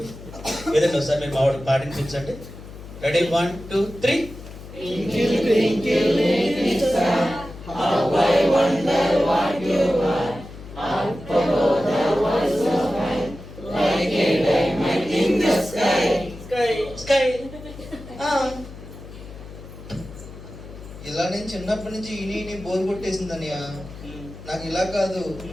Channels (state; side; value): noise; left; hum, 15 dB below the sound